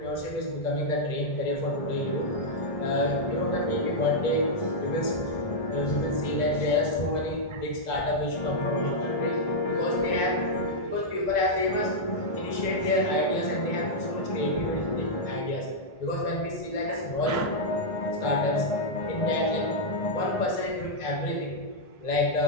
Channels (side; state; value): right; late; 2.0 ms